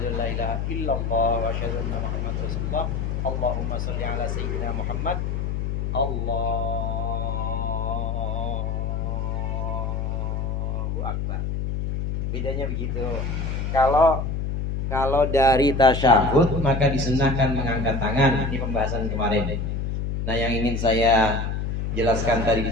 an la ilaha illallah, wa asyhadu anna Muhammadar Rasulullah, Allahumma sholli ala Sayyidina Muhammad, Allahu Akbar. Bedanya begitu. Kalau dari tasyahud maka disunahkan mengangkat tangan. Ini pembahasan kemarin. Nah, yang ingin saya jelaskan tadi di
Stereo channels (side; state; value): left; noise; hum, 1 dB below the sound